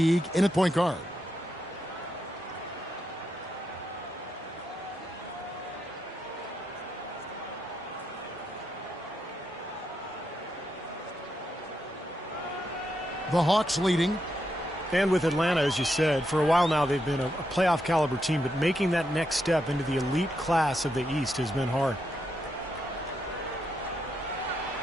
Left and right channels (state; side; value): normal; both; correlation 0.82